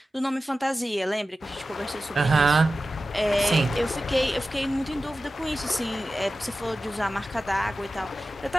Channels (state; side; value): normal; both; correlation 0.94